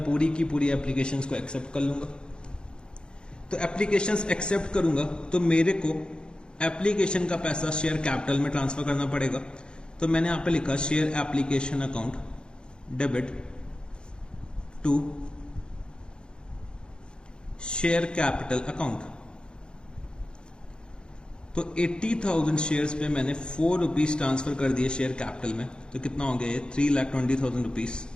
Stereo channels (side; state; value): right; late; 0.050 ms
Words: पूरी की पूरी एप्लीकेशंस को एक्सेप्ट कर लूंगा। तो एप्लीकेशंस एक्सेप्ट करूंगा तो मेरे को एप्लीकेशन का पैसा शेयर कैपिटल में ट्रांसफर करना पड़ेगा। तो मैंने यहाँ पे लिखा share application account debit to share capital account. तो 80,000 शेयर्स पे मैंने 4 रुपीज ट्रांसफर कर दिए शेयर कैपिटल में, तो कितना हो गया ये 3,20,000 रुपीज।